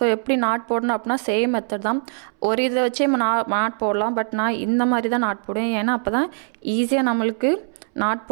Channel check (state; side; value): silent; left; 64 dB below the other